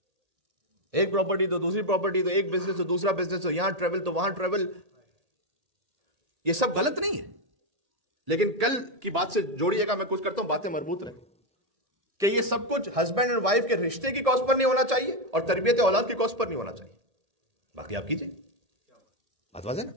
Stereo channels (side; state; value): left; late; 1.8 ms